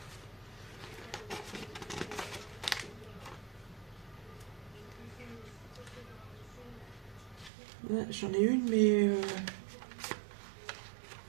Ouais, j'en ai une, mais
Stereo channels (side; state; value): left; drops out; at 7.5 s